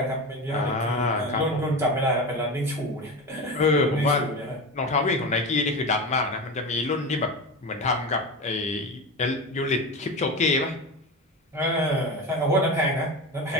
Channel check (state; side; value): normal; both; correlation 0.23